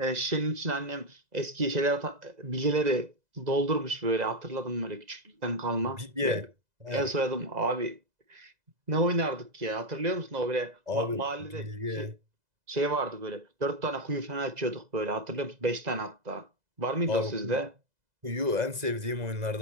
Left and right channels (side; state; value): left; late; 2.0 ms